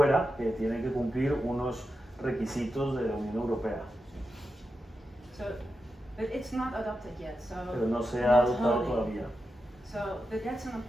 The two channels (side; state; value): both; normal; correlation 0.89